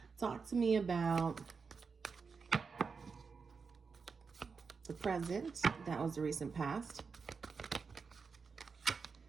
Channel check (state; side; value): quieter; left; 5.2 dB